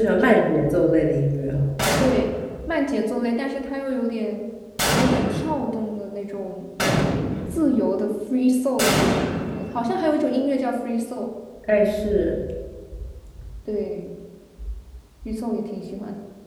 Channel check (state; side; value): identical; both; correlation 1.00